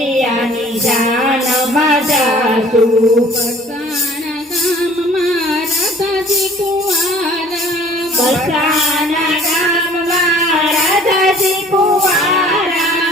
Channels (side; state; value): both; normal; correlation 0.52